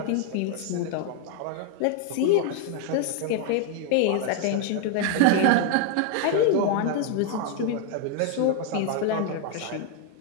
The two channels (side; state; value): both; different; correlation 0.00